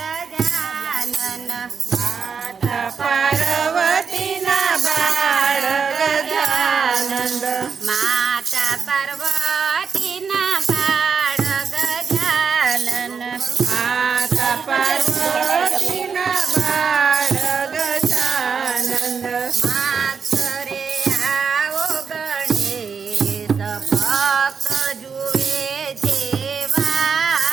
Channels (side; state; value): left; quieter; 6.0 dB